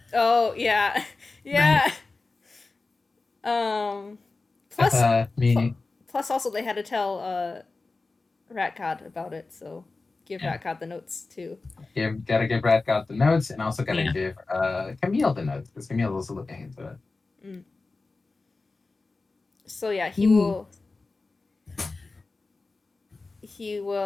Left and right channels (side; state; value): right; quieter; 3.6 dB